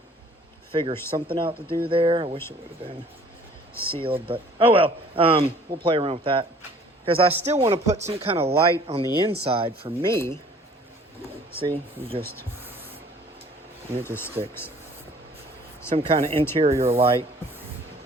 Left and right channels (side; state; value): both; normal; correlation 0.53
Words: Figure something out to do there. I wish it would have been sealed, but oh well. We'll play around with that, because I still want to put some kind of light on the inside for me. See, and it just sticks. Some kind of interior light.